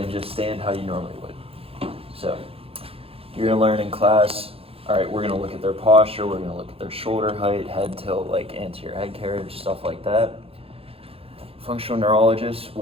just stand how you normally would. So you're going to learn in class, all right, we're going to look at their posture, we're going to look at their shoulder height, head tilt, like anterior head carriage, stuff like that. Functional neurologists,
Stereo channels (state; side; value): late; left; 0.28 ms